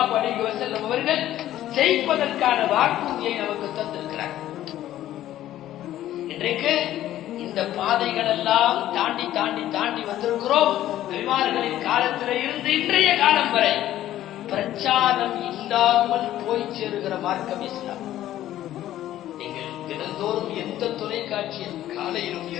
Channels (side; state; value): right; quieter; 13.1 dB